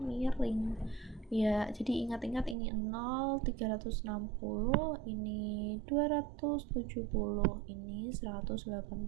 miring. Ya, jadi ingat-ingat ini 0, 360, ini 270, ini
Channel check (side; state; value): left; drops out; at 2.6 s